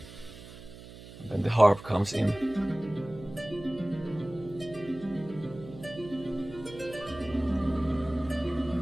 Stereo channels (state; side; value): noise; right; hum, 16 dB below the sound